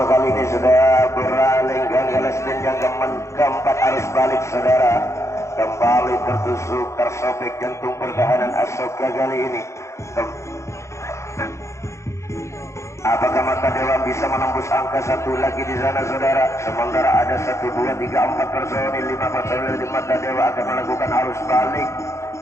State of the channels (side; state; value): right; late; 0.14 ms